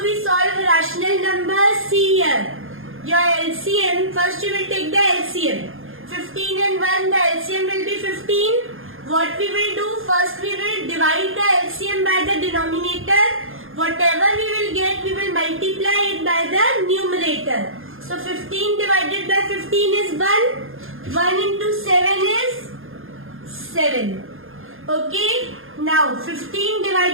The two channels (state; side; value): late; left; 0.60 ms